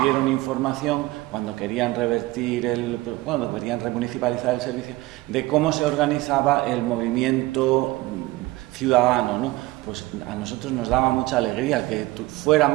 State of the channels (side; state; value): left; quieter; 19.5 dB